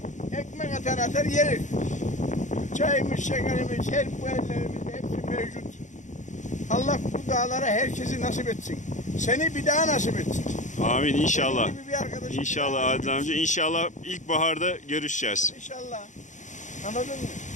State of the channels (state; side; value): late; right; 0.35 ms